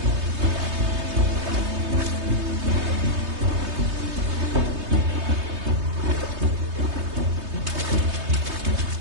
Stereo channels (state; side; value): late; left; 3.2 ms